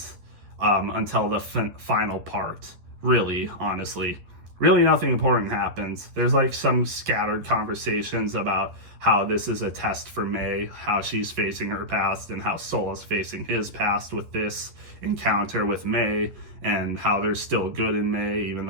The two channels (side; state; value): left; late; 11 ms